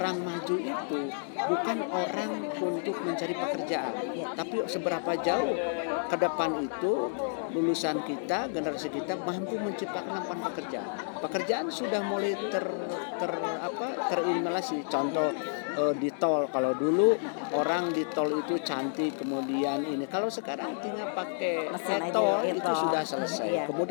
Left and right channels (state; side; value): silent; right; digital silence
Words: maju itu bukan orang untuk mencari pekerjaan, tapi seberapa jauh ke depan itu lulusan kita, generasi kita mampu menciptakan lapangan pekerjaan. Pekerjaan sudah mulai terinhalasi. Contoh di tol, kalau dulu orang di tol itu cantik, kemudian ini, kalau sekarang tinggal pakai tol itu sudah selesai.